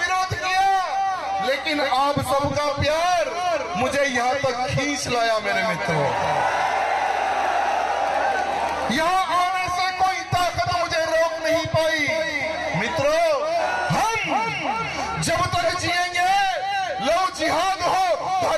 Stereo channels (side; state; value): both; identical; correlation 1.00